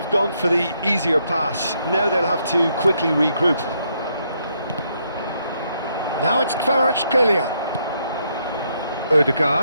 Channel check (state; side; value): inverted; both; correlation -0.75